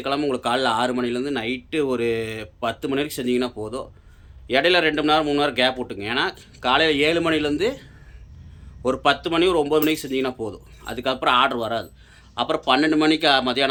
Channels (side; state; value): both; identical; correlation 1.00